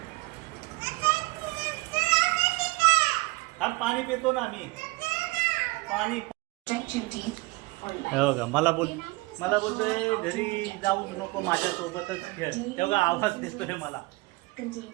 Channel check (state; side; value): quieter; left; 23.7 dB